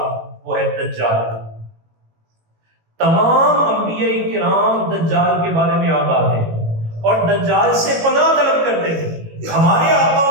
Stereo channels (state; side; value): late; left; 18 ms